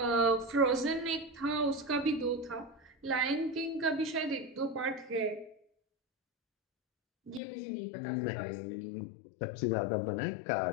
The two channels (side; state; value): right; drops out; at 7.4 s